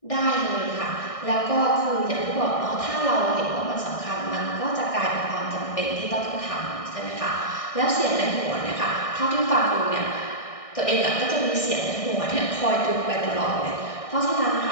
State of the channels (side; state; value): right; late; 1.6 ms